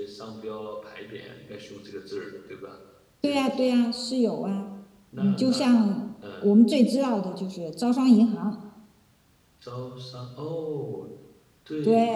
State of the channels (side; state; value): both; identical; correlation 1.00